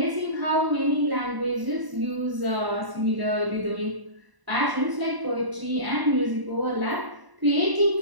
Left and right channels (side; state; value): left; late; 1.0 ms